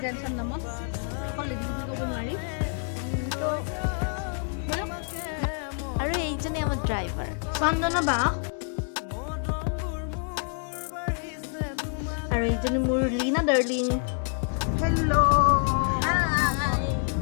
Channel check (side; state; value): right; silent; 56 dB below the other